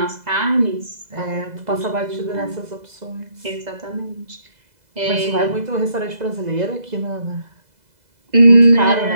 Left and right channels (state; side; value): late; left; 2.0 ms